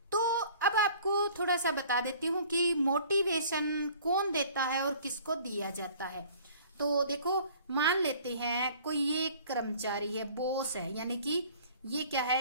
तो अब आपको थोड़ा सा बता देती हूँ कि मोटिवेशन कौन देता है और किसको दिया जाता है। तो देखो, मान लेते हैं कोई ये कर्मचारी है, बॉस है, यानी कि ये क्या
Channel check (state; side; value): inverted; both; correlation -0.50